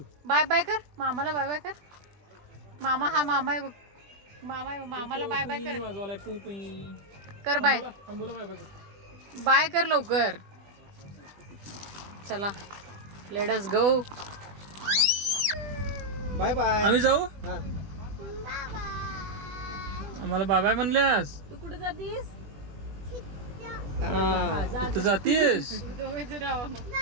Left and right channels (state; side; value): late; left; 20 ms